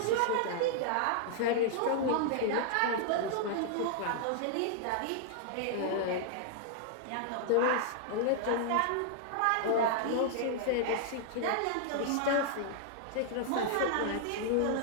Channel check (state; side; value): different; both; correlation -0.01